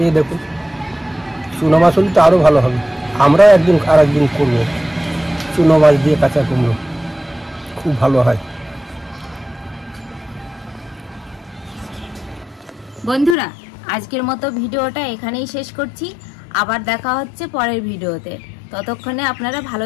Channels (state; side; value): drops out; right; at 13.4 s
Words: দেখুন, চুনো মাছ হলে তো আরও ভালো হবে। আমরা একদিন আর একদিন করবো চুনো মাছ দিয়ে কাঁচা কুমড়ো, খুব ভালো হয়। বন্ধুরা, আজকের মতো ভিডিওটা এখানেই শেষ করছি। আবার দেখা হচ্ছে পরের ভিডিওতে। ততক্ষণে আপনারা